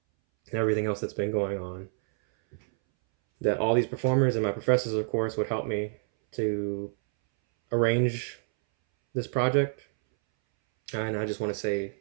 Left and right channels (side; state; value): left; silent; 59 dB below the other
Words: everything else that's been going on. That all these performers and my professors, of course, would help me to arrange this project. And I just want to say